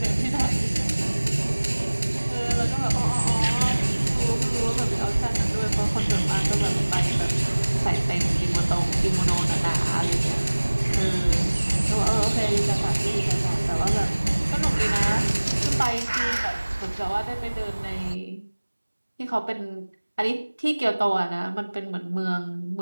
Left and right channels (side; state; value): both; inverted; correlation -1.00